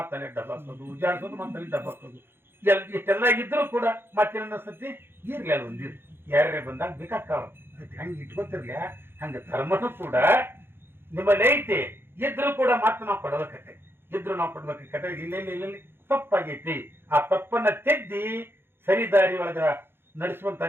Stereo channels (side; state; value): left; late; 0.11 ms